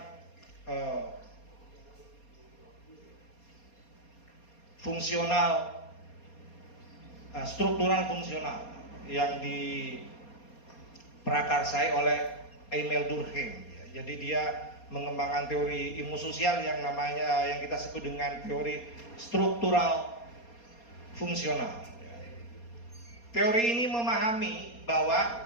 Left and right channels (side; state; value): right; late; 4.2 ms